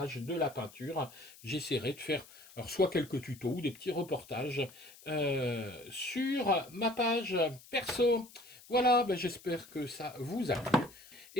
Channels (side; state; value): left; noise; hiss, 21 dB below the sound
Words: de la peinture. J'essaierai de faire alors, soit quelques tutos ou des petits reportages sur ma page perso. Voilà, ben, j'espère que ça vous a plu.